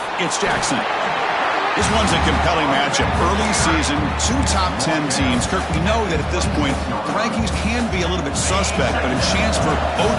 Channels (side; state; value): both; identical; correlation 1.00